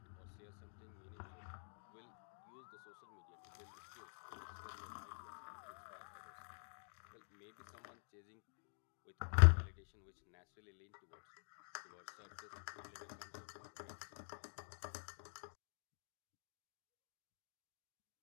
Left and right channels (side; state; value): right; silent; digital silence